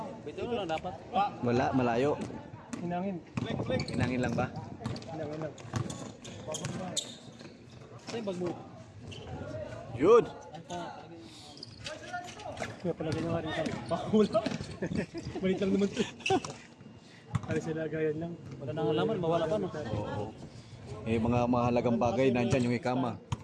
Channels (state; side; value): identical; both; correlation 1.00